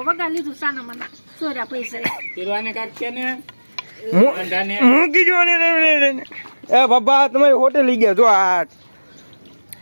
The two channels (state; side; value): inverted; both; correlation -1.00